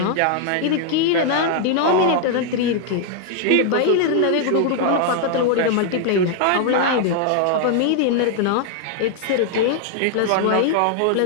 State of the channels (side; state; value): both; different; correlation 0.00